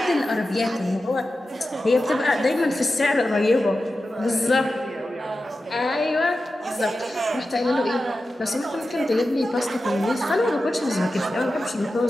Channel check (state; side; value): normal; both; correlation 0.93